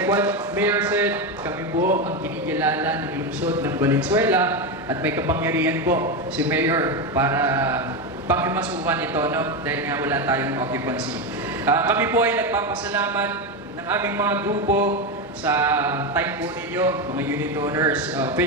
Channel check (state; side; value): normal; both; correlation 0.13